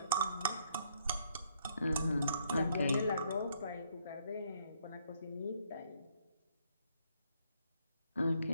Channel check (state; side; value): inverted; both; correlation -0.70